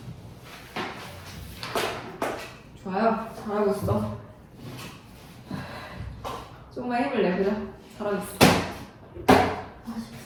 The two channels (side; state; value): both; identical; correlation 1.00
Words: 좋아요. 잘하고 있어. 조금만 힘을 내, 그죠? 잘하고 있어.